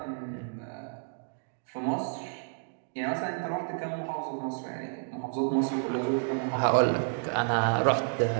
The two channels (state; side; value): silent; left; digital silence